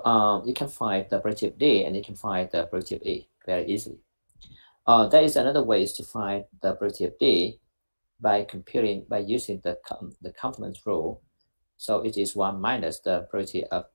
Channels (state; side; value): inverted; both; correlation -1.00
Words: you can find the probability of D and you can find the probability of E very easily. There is another way to find the probability of D by using the complement rule. So it is 1 minus the probability of